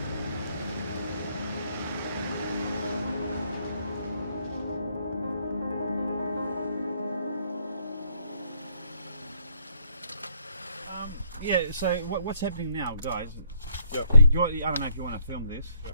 Yeah. So what's happening now, guys? Yeah. I don't know if you want to film this.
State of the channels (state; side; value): inverted; both; correlation -0.69